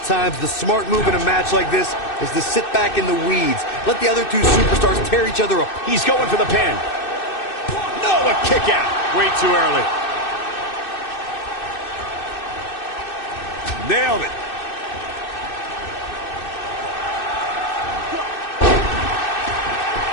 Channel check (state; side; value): late; right; 2.6 ms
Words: times the smart move in a match like this is to sit back in the weeds. Let the other two superstars tear each other up. He's going for the pin. No, a kick out. Way too early. Nailed it.